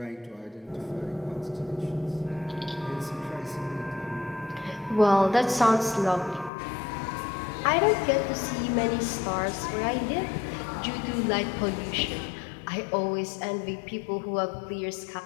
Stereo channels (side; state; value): right; drops out; at 6.5 s